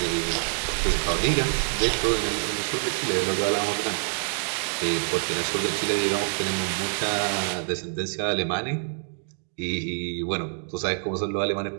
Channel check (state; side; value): silent; left; 57 dB below the other